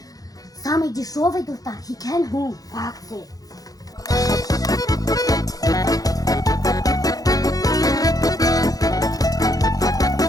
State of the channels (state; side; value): late; right; 0.18 ms